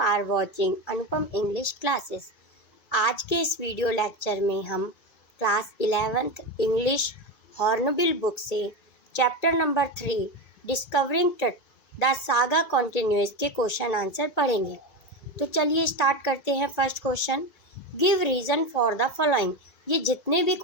watching Anupam English Classes। आज के इस वीडियो लेक्चर में हम class 11th English Hornbill book से chapter number 3 discovering the saga continuous के क्वेश्चन आंसर पढ़ेंगे। तो चलिए स्टार्ट करते हैं। First question, give reason for the following. ये जितने भी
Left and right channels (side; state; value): right; late; 2.4 ms